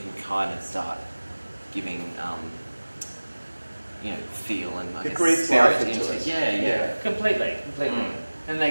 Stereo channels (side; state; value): both; inverted; correlation -1.00